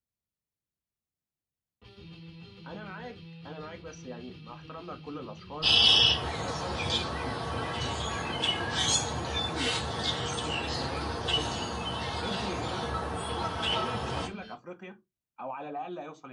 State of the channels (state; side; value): identical; both; correlation 1.00